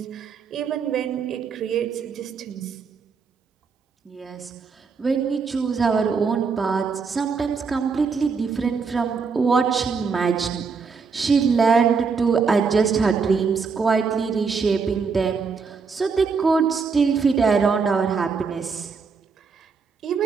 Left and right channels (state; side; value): quieter; left; 5.3 dB